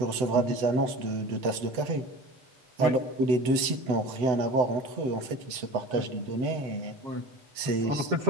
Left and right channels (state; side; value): late; left; 7.9 ms